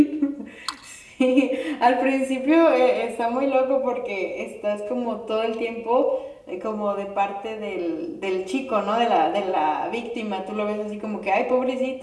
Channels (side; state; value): both; identical; correlation 1.00